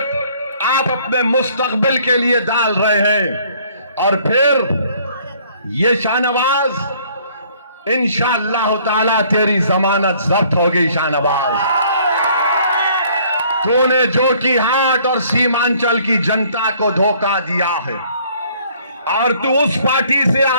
आप अपने मुस्तकबिल के लिए डाल रहे हैं। और फिर ये शाहनवाज इंशाअल्लाह ताला तेरी जमानत जब्त होगी शाहनवाज। तूने जोकीहाट और सीमांचल की जनता को धोखा दिया है और तू उस पार्टी से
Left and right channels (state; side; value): inverted; both; correlation -0.59